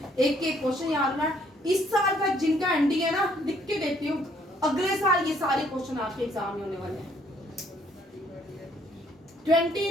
एक एक क्वेश्चन याद रखना है। इस साल का जिनका एंडी है ना, लिख के देती हूँ, अगले साल ये सारे क्वेश्चन आपके एग्जाम में होने वाले हैं।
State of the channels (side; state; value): both; normal; correlation 0.65